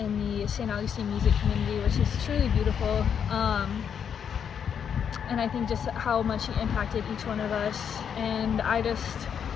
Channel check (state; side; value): quieter; right; 7.8 dB